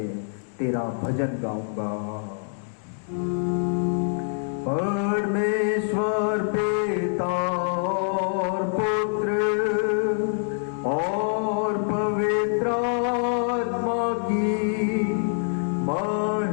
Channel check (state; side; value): silent; right; digital silence